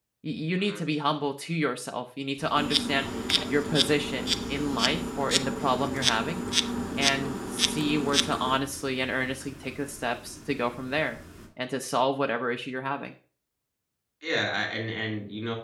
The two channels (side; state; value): both; identical; correlation 1.00